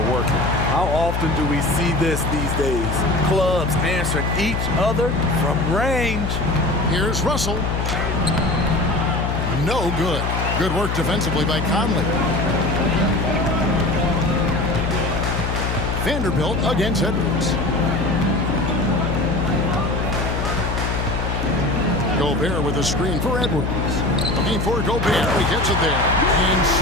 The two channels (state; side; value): noise; left; hum, 1 dB below the sound